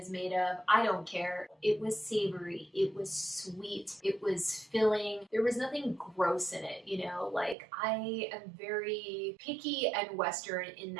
made of. I don't care. It was savory. It was sweet. It was filling. There was nothing gross in it, you know? Like, I am very picky and Western in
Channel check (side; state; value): left; drops out; at 7.6 s